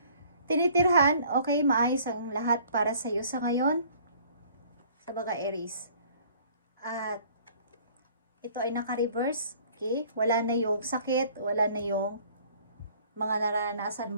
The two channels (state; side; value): inverted; both; correlation -0.55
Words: tinitirhan, okay? Maayos ang lahat para sa iyo sa ngayon, sa mga Aries. At ito ay naka-reverse, okay? Wala na yung sakit, wala na yung mga naranasan